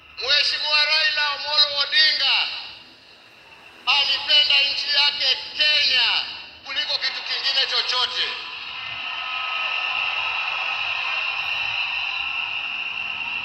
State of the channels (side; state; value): both; normal; correlation 0.95